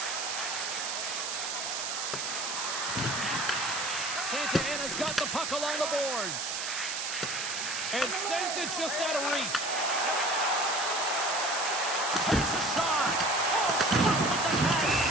Santa Ana's got the puck along the boards. And sends it just out of reach. Takes a shot. Oh, stop with the pass.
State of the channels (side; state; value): right; noise; hiss, 3 dB below the sound